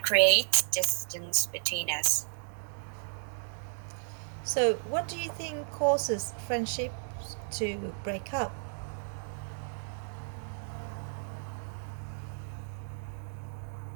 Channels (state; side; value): silent; left; digital silence